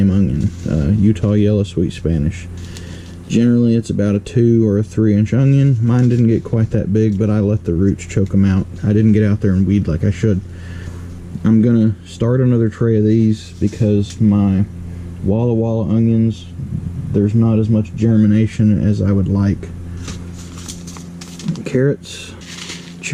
onion. Utah Yellow Sweet Spanish. Generally, it's about a 2 or a 3-inch onion. Mine didn't get quite that big, but I let the roots choke them out. I didn't get out there and weed like I should. I'm gonna start another tray of these because my Walla Walla onions, there's not as much germination as I would like. Carrots,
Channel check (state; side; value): identical; both; correlation 1.00